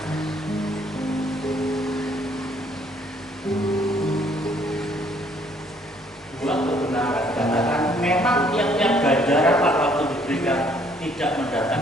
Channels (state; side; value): normal; both; correlation 0.64